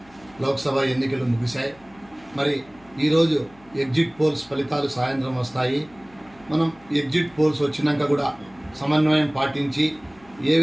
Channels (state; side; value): noise; left; hum, 27 dB below the sound